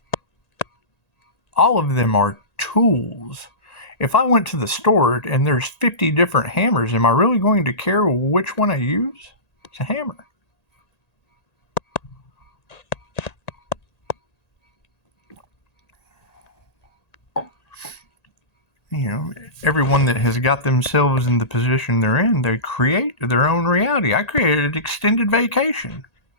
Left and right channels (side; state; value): right; late; 1.8 ms